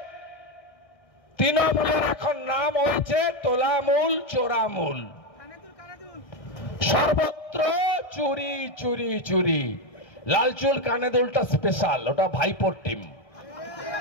তৃণমূলের এখন নাম হয়েছে তোলামূল, চোরামূল, সর্বত্র চুরি চুরি চুরি। লালচুল কানেদুলটা স্পেশাল, ওটা ভাইপোর টিম।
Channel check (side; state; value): right; late; 1.6 ms